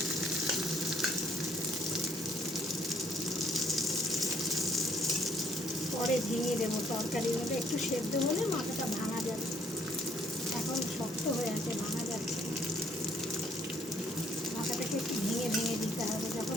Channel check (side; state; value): both; normal; correlation 0.63